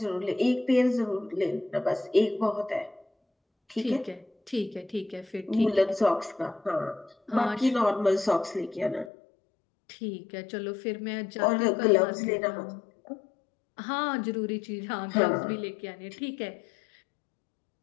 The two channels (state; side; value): drops out; right; at 9.1 s